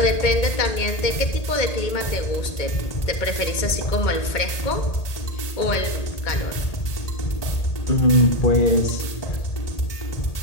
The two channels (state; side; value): late; right; 1.8 ms